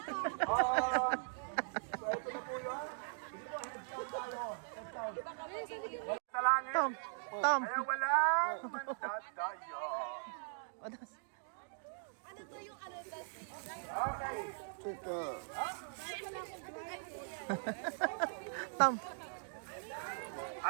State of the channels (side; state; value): left; silent; digital silence